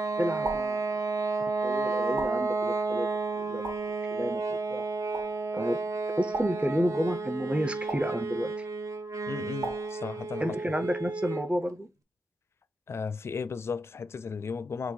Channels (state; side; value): normal; both; correlation 0.85